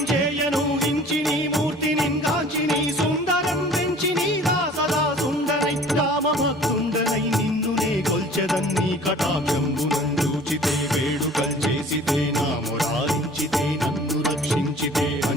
హించి నీ మూర్తి నింగాంచి నీ సుందరం పెంచి నీగా సదా సుందరై రామభక్తుండనై నిన్నునే కొల్చెదన్నీ కటాక్షంబునందూచితే వేడుకల్ చేసితే నా మురారించితే నన్ను రక్షించితే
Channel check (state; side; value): normal; both; correlation 0.48